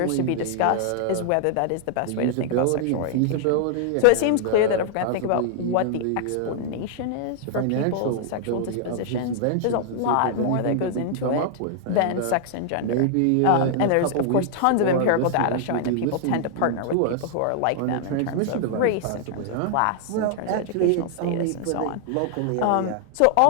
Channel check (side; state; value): both; different; correlation 0.00